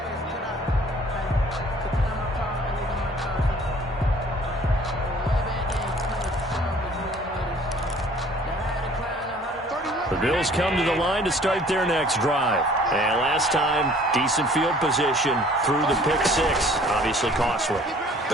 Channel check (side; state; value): both; normal; correlation 0.53